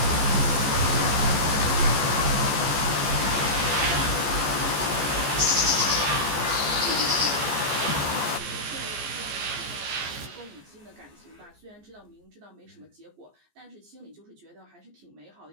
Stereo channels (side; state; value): left; late; 14 ms